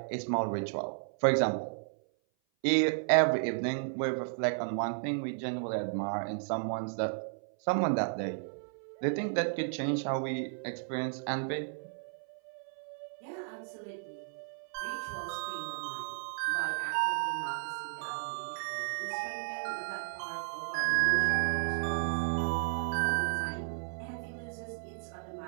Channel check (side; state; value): left; silent; 55 dB below the other